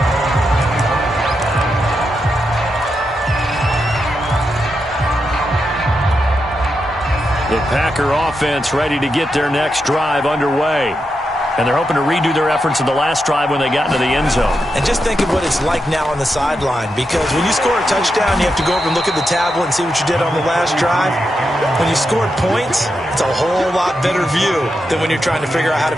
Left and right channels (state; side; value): normal; both; correlation 0.86